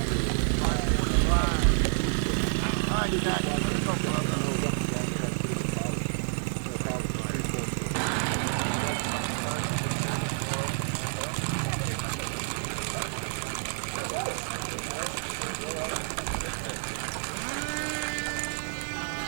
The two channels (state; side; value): silent; left; 58 dB below the other